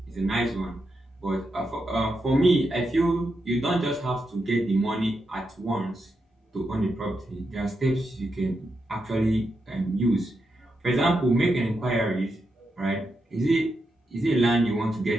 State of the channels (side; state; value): both; normal; correlation 0.85